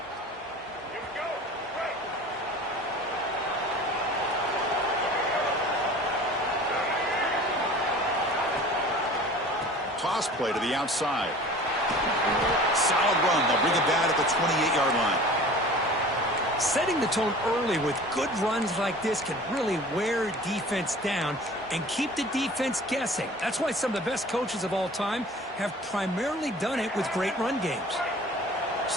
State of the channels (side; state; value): both; normal; correlation 0.43